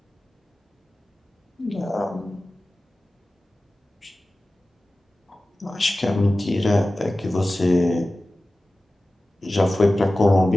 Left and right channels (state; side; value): normal; both; correlation 0.96